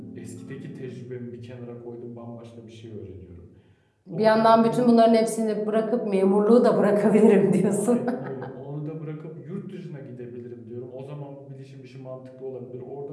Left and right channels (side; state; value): both; identical; correlation 1.00